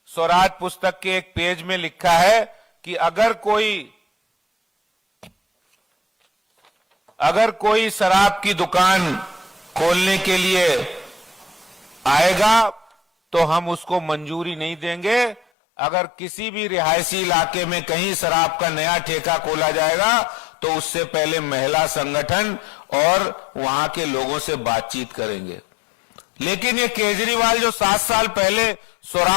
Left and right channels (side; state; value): right; drops out; at 15.4 s